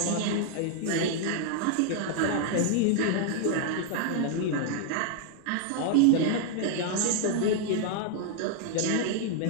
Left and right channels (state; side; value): different; both; correlation 0.00